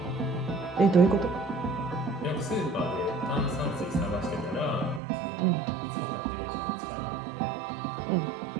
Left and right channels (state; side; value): drops out; left; at 5.0 s